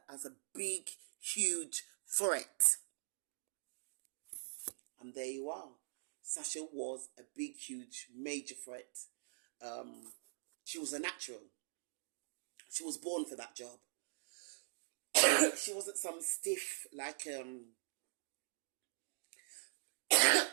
as a big, huge threat. And there you are. Sasha was a big, huge, major threat She was a natural. She was born for that job. She wasn't some stiff like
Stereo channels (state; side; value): silent; left; digital silence